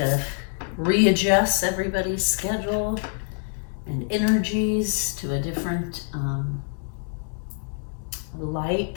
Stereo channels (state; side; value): silent; right; 55 dB below the other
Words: of readjusts everybody's schedule and energies to a different